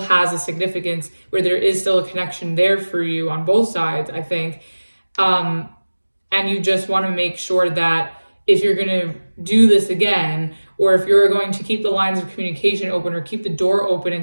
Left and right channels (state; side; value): inverted; both; correlation -1.00